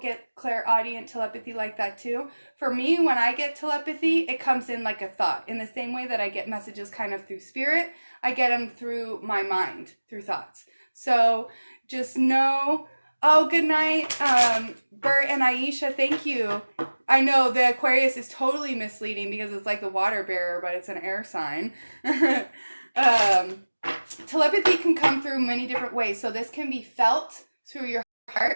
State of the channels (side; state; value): both; inverted; correlation -1.00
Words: clairaudient telepathy like that too. For me, when I get telepathy, it comes in like a thought. In the same way that I get messages kind of through spirit, I get them through my mind, through thoughts. So just know... Oh, good night, Bert and Aisha, thank you. I know the Aquarius is totally misleading because it's like the water bearer, but it's an air sign. Telepathy can come through many different ways. So this can be felt through your